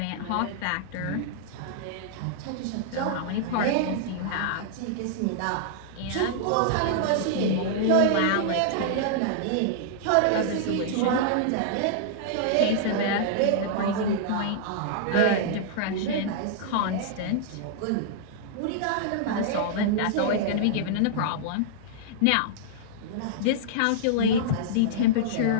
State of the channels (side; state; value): both; different; correlation -0.02